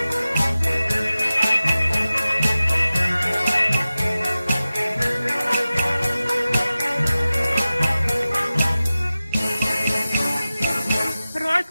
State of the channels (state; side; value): inverted; both; correlation -0.95